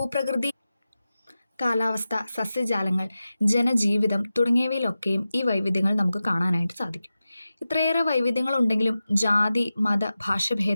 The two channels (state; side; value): inverted; both; correlation -0.94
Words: കാലാവസ്ഥ, സസ്യജാലങ്ങൾ, ജനജീവിതം തുടങ്ങിയവയിലൊക്കെയും ഈ വൈവിധ്യങ്ങൾ നമുക്ക് കാണാനായിട്ട് സാധിക്കും. ഇത്രയേറെ വൈവിധ്യങ്ങൾ ഉണ്ടെങ്കിലും ജാതി, മത,